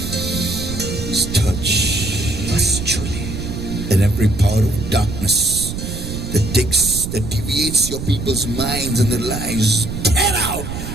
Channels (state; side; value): noise; right; rumble, 6 dB below the sound